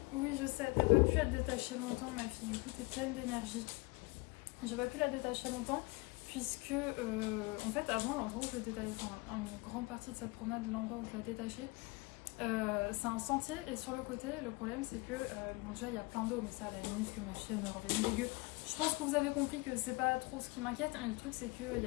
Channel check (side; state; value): right; quieter; 25.0 dB